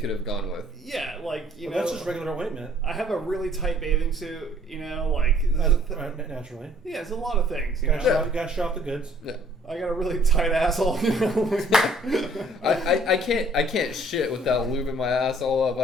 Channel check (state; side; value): normal; both; correlation 0.59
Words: have gone with. Yeah, like, that's just regular ointment. I have a really tight bathing suit, like... Naturally. Yeah, it's a lot of things, You gotta show off the goods. Yeah. I got a really tight asshole, I can't shit without lubing my ass all up.